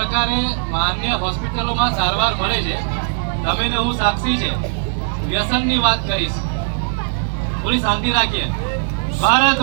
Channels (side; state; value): left; silent; 60 dB below the other